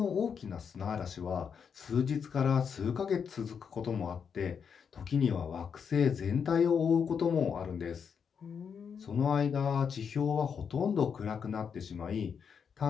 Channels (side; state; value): right; quieter; 6.8 dB